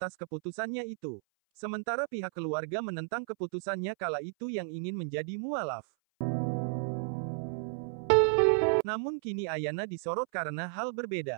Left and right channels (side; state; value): left; silent; 56 dB below the other